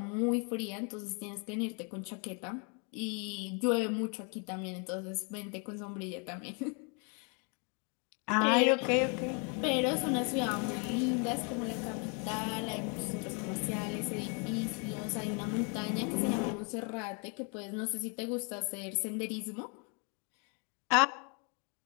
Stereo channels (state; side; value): quieter; right; 36.4 dB